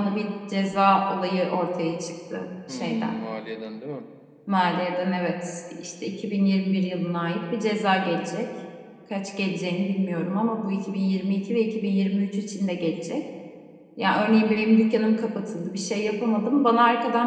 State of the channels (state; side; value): identical; both; correlation 1.00